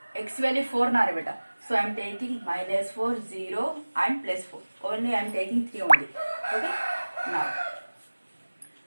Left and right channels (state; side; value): inverted; both; correlation -1.00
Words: x value 4 na beta. So I am taking minus 4, 0 and plus 4. Only I am taking 3 only. Okay.